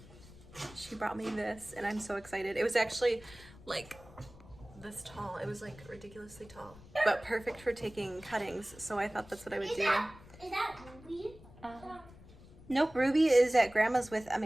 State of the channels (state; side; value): noise; left; rumble, 20 dB below the sound